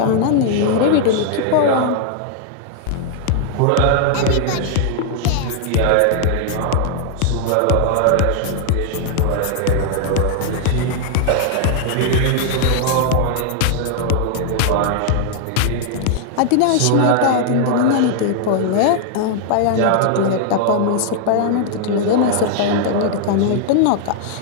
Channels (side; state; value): both; different; correlation 0.00